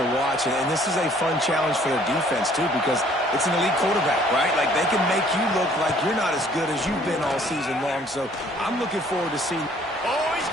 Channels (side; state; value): both; normal; correlation 0.59